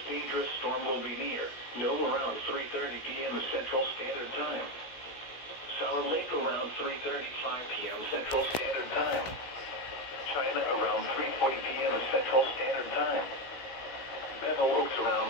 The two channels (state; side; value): late; right; 17 ms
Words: dangerous storm will be near Nome around 3:30 p.m. Central Standard Time. Solid Lake around 3:35 p.m. Central Standard Time. China around 3:40 p.m. Central Standard Time. Bevel Oaks